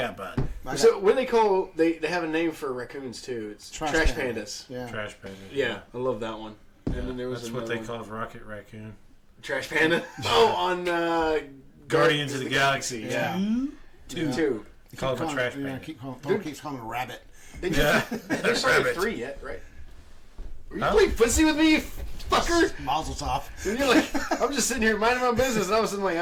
bud. So what do they call... They have a name for raccoons, too. It's trash pandas. Yeah. Trash panda. Yeah, I love that one. And then there was That's what another they call Rocket Raccoon. Trash panda? Oh, on... Guardians of the Galaxy. Yeah. Two. They call him a trash panda. Keeps calling him a rabbit. They Yeah. There's only Rabbit. 3 yet, right? Are you Huh? playing footsie with me, you fucker? Mazel tov. And you're like, I'm just sitting here minding my business, and all of a sudden, like,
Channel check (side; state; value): both; identical; correlation 1.00